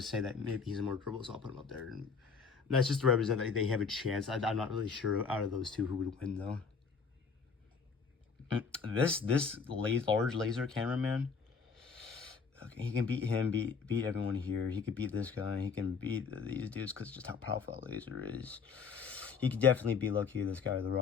say that maybe he's more durable, so I'll put him up there. And that's just to represent that they have a chance. I'm not really sure out of those two who would win though. This large laser cameraman. Okay, he can beat him, beat everyone here. He could beat this guy. He can beat these dudes because just how powerful that laser is. He could definitely beat Lucky, this guy with the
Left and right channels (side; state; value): right; quieter; 5.5 dB